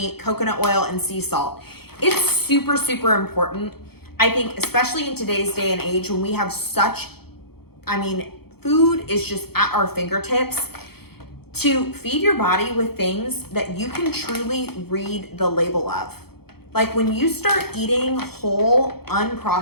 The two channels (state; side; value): late; right; 0.96 ms